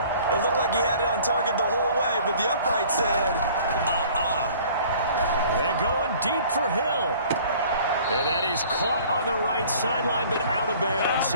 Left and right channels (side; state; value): both; inverted; correlation -0.51